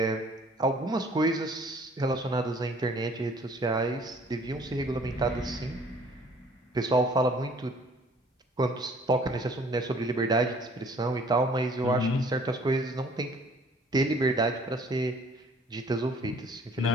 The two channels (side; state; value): both; normal; correlation 0.56